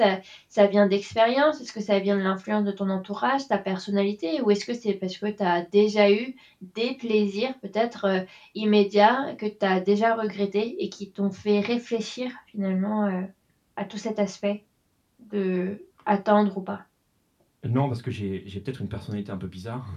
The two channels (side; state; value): both; identical; correlation 1.00